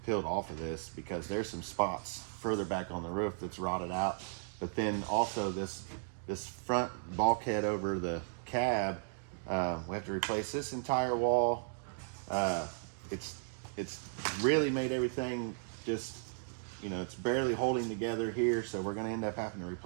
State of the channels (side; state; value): left; silent; digital silence